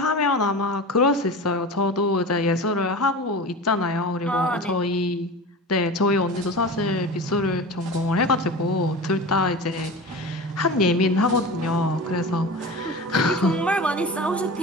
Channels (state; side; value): normal; both; correlation 0.31